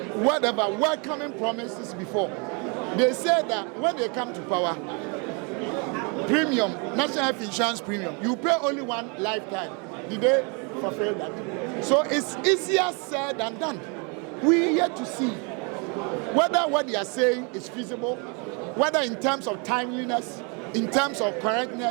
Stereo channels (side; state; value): left; quieter; 33.8 dB